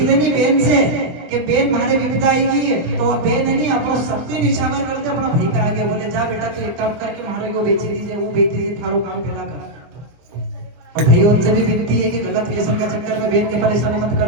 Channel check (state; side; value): late; left; 24 ms